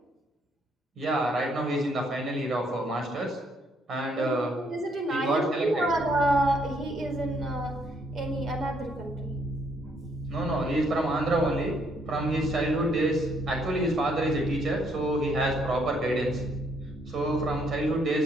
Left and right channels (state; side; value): normal; both; correlation 0.70